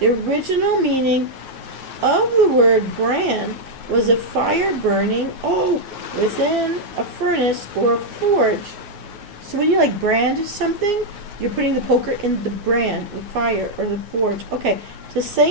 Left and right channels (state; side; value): late; left; 9.8 ms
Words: original meaning of the word brand was a fire burning within a furnace or a forge. So when you like brand something, you're putting the poker in the brand, the fire or the forge. Okay. To